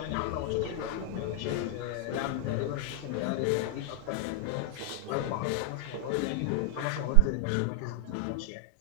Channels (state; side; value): different; both; correlation 0.00